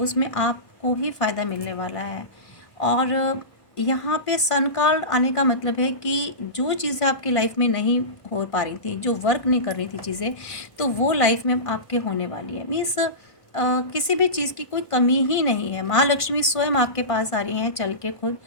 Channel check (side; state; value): right; late; 1.5 ms